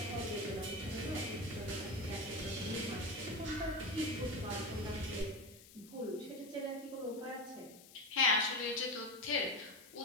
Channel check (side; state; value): left; noise; hiss, 20 dB below the sound